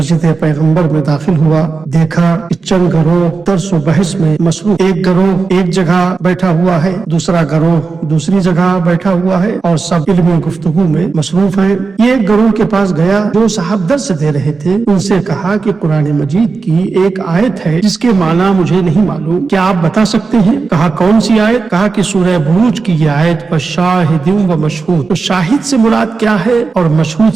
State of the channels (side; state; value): left; quieter; 4.4 dB